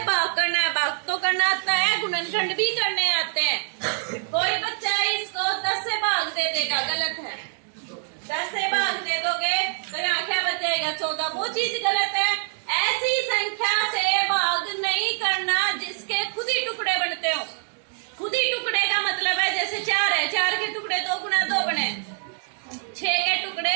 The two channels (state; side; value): silent; left; digital silence